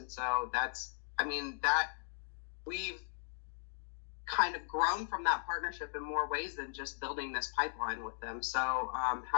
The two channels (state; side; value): silent; right; 53 dB below the other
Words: so that we've kind of grown from that partnership in more ways than just building this pipeline with them. So